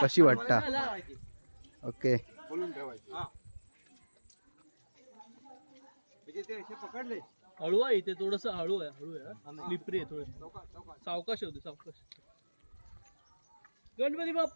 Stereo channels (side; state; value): both; inverted; correlation -1.00